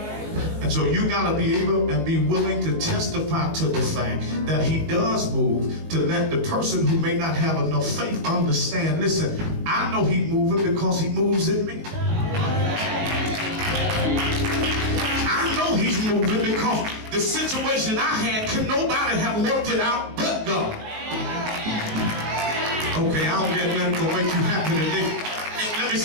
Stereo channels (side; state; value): left; late; 19 ms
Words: And so you got to be able and be willing to testify to the fact that he does move, to let the person who may not have enough faith understand, listen, I know he's moving because he moves in me. I know he's moving because the situation I had, could nobody have worked it out but God. Okay, I don't get nothing to make you happy today. Let me